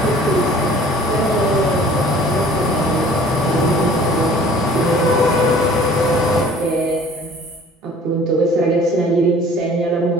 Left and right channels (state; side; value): normal; both; correlation 0.50